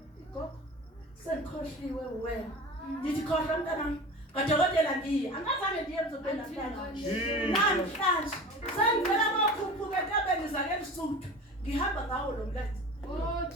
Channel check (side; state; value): both; normal; correlation 0.36